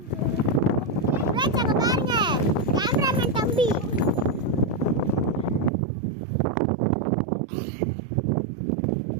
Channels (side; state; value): left; drops out; at 5.7 s